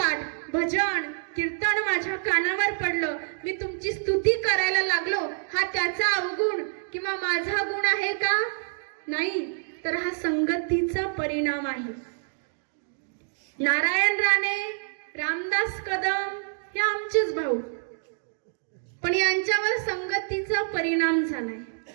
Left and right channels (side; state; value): left; silent; digital silence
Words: भजन, कीर्तन माझ्या कानावर पडलं. मी तुमची स्तुती करायला लागलो. हा त्याचा अवगुण किंवा माझा गुण आहे का? नाही, तर हा संगतीचा परिणाम आहे. नारायण राणे, रामदास कदम हे आमचेच भाऊ, पण यांच्यावर संगतीचा परिणाम झालाय.